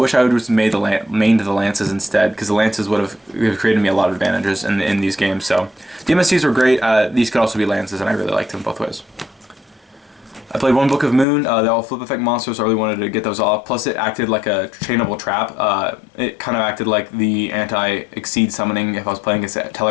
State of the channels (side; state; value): right; drops out; at 11.2 s